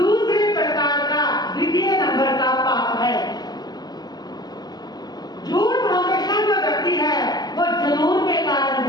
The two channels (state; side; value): late; right; 0.20 ms